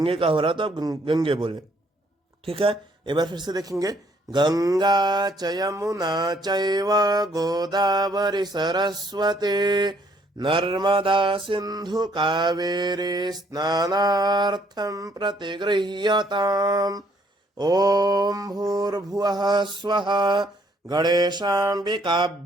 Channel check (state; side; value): normal; both; correlation 0.66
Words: का हो रहा है तो आप गंगे बोलें। ठीक है, एक बार फिर से देखेंगे। गंगा च यमुना चैव गोदावरी सरस्वती नर्मदा सिंधु कावेरी स्नानार्थम प्रतिगृह्यताम। ओम भूर्भुवः स्वः